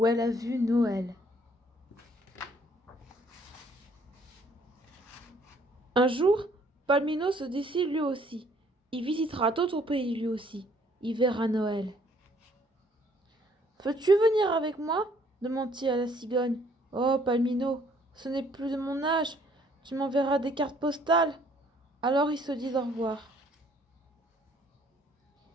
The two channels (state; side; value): normal; both; correlation 0.62